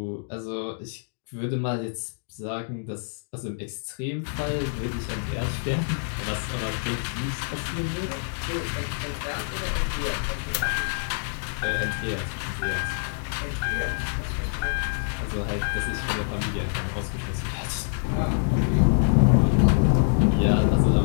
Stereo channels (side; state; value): right; silent; digital silence